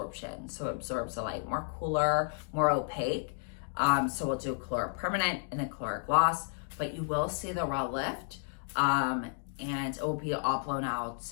So it absorbs the light more cooler, more opaque. So we'll do Color Permanent and then Color Gloss, but you will see the raw lift, and it will be all blown out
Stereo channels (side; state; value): right; silent; digital silence